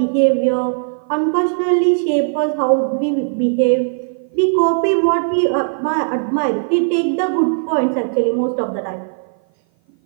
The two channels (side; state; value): left; silent; 56 dB below the other